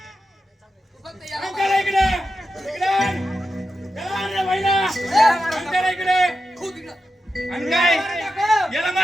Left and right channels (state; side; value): normal; both; correlation 0.90